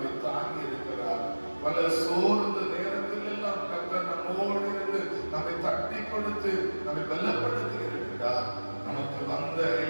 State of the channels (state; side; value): inverted; both; correlation -1.00